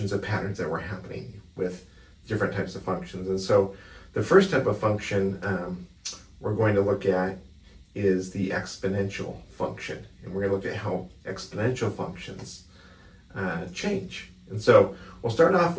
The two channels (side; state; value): both; identical; correlation 1.00